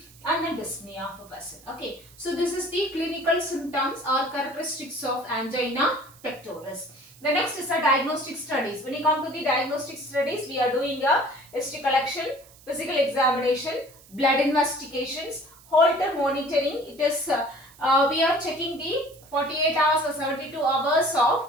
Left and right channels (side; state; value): right; noise; hiss, 24 dB below the sound